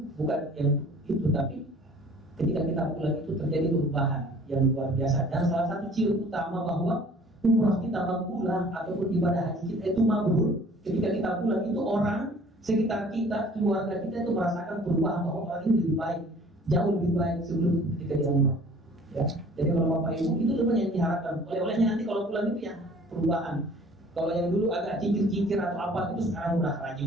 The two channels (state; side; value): normal; both; correlation 0.51